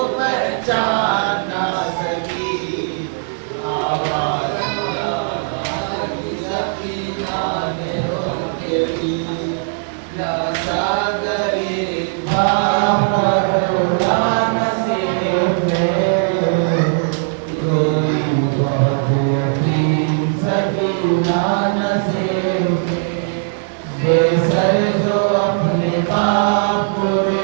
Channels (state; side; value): silent; left; digital silence